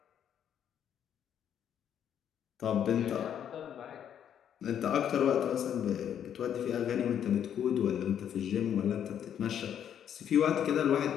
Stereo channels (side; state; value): right; quieter; 9.3 dB